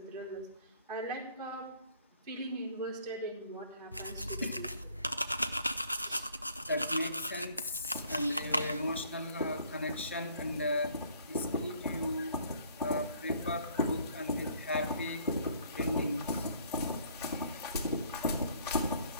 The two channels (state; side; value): inverted; both; correlation -0.60